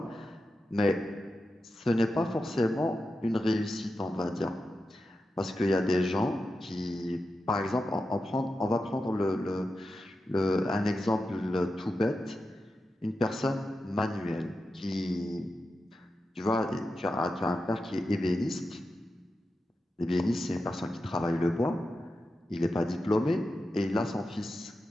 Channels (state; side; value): normal; both; correlation 0.90